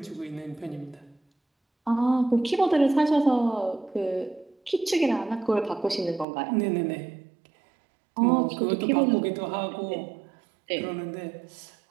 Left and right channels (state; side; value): drops out; left; at 6.2 s